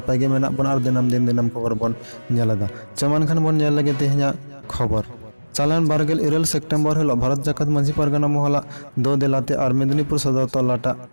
गे मेना बन आर दिनम दिन दिनम खबर बन नेलदा चमान खान बन नेल लगे तेह냐 खबर चालान बारगेल 2 सेप्टेम्बर हिलो भारत जाकत मांझी परगना मोहला दो दिलाते और मेदिनीपुर सदर तलाटा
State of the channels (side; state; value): both; inverted; correlation -1.00